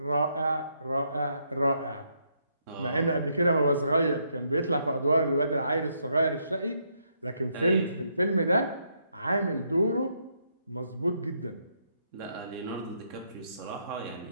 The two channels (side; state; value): both; inverted; correlation -0.76